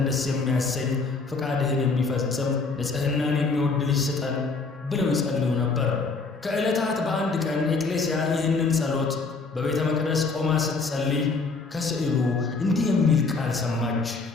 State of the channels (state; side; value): quieter; right; 4.2 dB